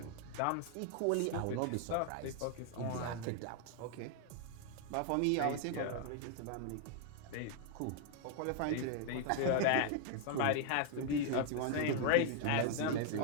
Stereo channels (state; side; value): different; both; correlation 0.00